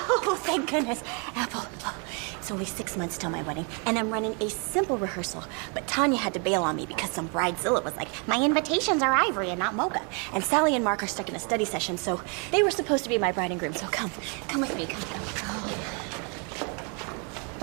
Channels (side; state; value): left; quieter; 35.9 dB